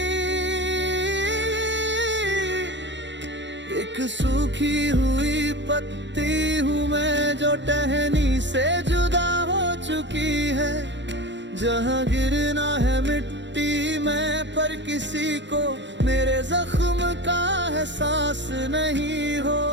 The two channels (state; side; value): late; left; 0.53 ms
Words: एक सूखी हुई पत्ती हूँ मैं जो टहनी से जुदा हो चुकी है। जहाँ गिरना है मिट्टी में पर किसी को मेरे जख्म का एहसास नहीं